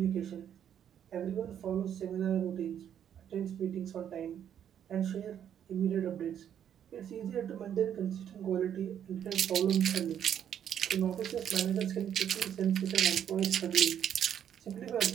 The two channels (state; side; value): quieter; left; 9.4 dB